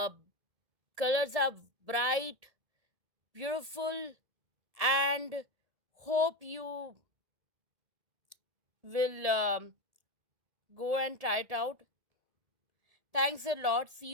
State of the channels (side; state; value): left; late; 1.8 ms